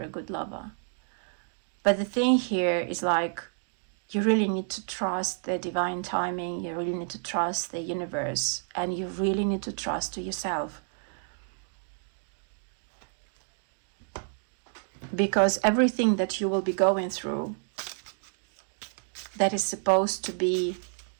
a good lover. But the thing here is like, you really need to trust the divine timing, you really need to trust the universe, and you really need to trust to yourself. Because everything that you will be going through, that is supposed to be,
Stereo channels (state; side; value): silent; left; 58 dB below the other